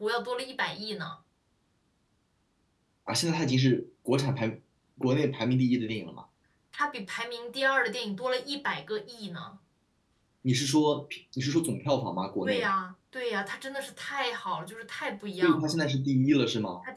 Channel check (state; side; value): identical; both; correlation 1.00